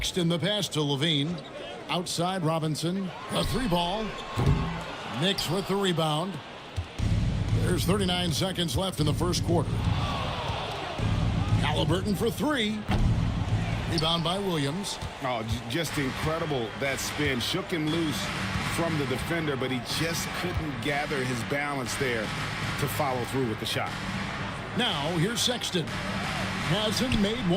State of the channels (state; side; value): identical; both; correlation 1.00